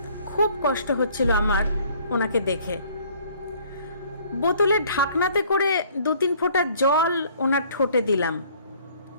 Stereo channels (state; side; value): inverted; both; correlation -0.58